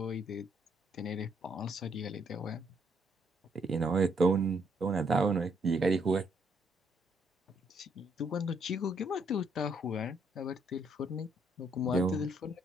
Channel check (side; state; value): both; normal; correlation 0.71